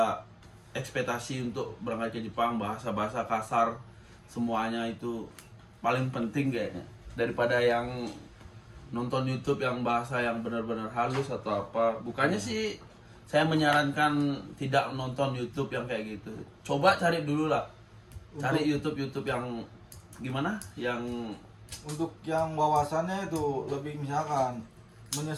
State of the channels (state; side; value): identical; both; correlation 1.00